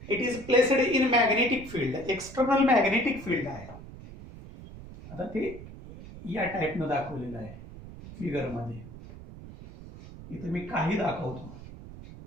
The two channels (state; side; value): noise; right; rumble, 15 dB below the sound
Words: It is placed in magnetic field, external magnetic field आहे. आता ते या टाइपनं दाखवलेलं आहे फिगर मध्ये. इथे मी काही दाखवतो.